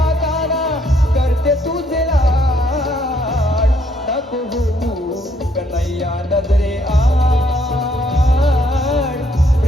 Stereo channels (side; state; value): both; normal; correlation 0.69